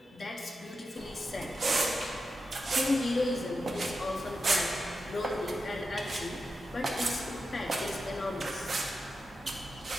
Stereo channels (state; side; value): normal; both; correlation 0.89